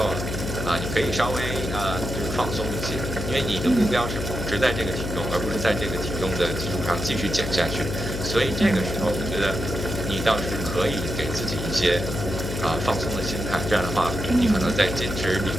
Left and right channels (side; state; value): left; noise; hum, 5 dB below the sound